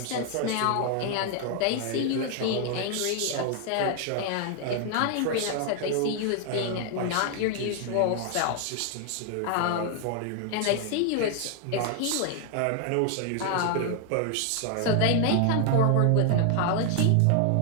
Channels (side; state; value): both; different; correlation 0.00